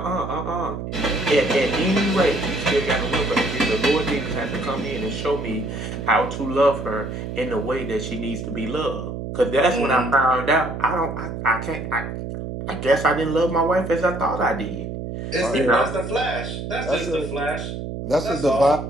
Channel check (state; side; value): noise; right; hum, 6 dB below the sound